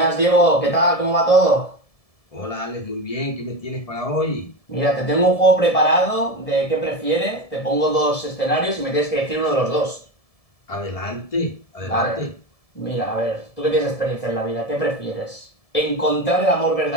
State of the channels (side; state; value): right; late; 1.7 ms